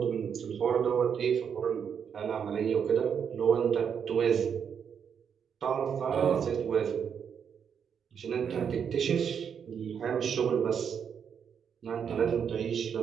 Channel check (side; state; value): left; quieter; 7.4 dB